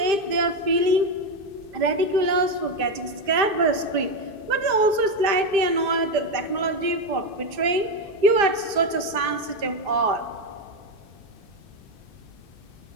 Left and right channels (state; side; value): late; left; 2.6 ms